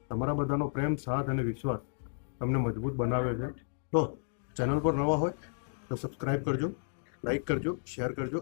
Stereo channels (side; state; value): right; silent; digital silence